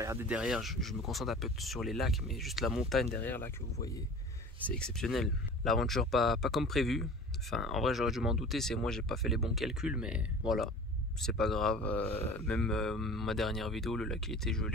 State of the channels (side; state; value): both; normal; correlation 0.40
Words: derrière. Je me concentre un peu sur les lacs, mais juste la montagne derrière là que vous voyez, c'est exceptionnel. L'aventure pas comme prévu. Enfin, en vrai, j'aurais dû m'en douter. C'est moi, j'ai pas fait les bons calculs, mais voilà, c'est pas grave. Même ma dernière vidéo, le lac il était